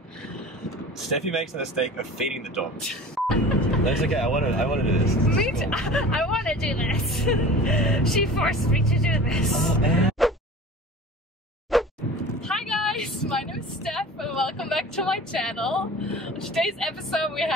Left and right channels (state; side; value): normal; both; correlation 0.39